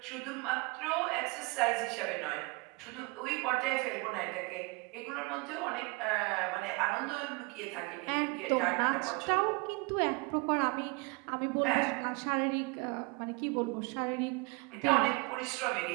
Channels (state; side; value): quieter; left; 27.7 dB